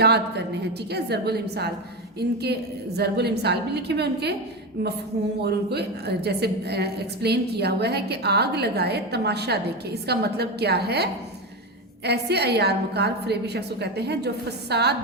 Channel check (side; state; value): both; normal; correlation 0.17